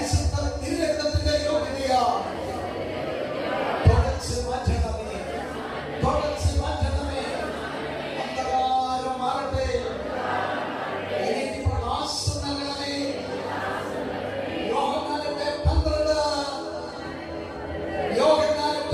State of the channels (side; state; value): both; identical; correlation 1.00